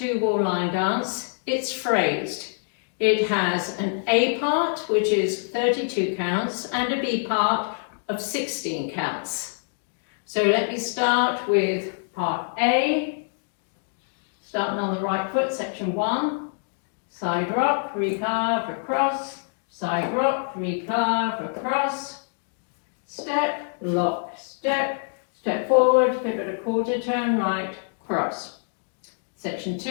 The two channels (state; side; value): silent; right; digital silence